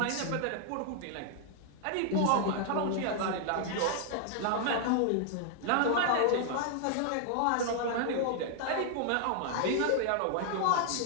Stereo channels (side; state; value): both; different; correlation 0.00